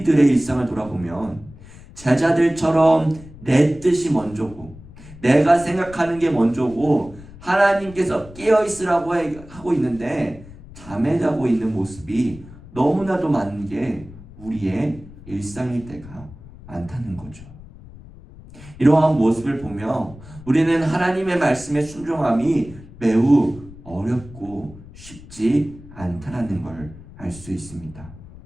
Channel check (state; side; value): noise; left; rumble, 18 dB below the sound